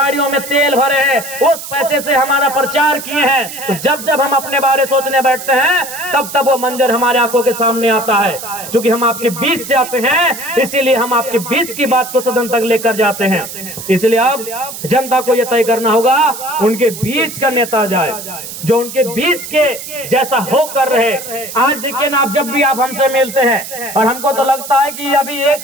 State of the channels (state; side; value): noise; right; hiss, 10 dB below the sound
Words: में तेल भरे हैं, उस पैसे से हमारा प्रचार किए हैं। तो जब जब हम अपने बारे सोचने बैठते हैं, तब तब वो मंजर हमारे आंखों के सामने आता है। क्योंकि हम आपके बीच से आते हैं, इसीलिए हम आपके बीच की बात को सदन तक लेकर जाते हैं। इसलिए अब जनता को यह तय करना होगा, उनके बीच का नेता जाए जो उनके बीच के जैसा होकर रहे। आज देखिए ना, आप जब भी आप हमसे मिलते हैं, और हमको तो लगता है कि अभी 1